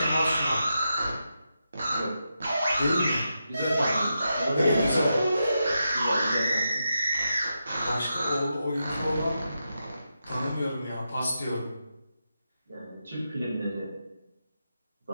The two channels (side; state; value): both; inverted; correlation -0.87